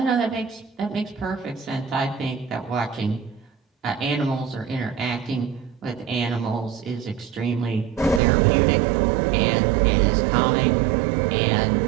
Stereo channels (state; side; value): drops out; left; at 8.2 s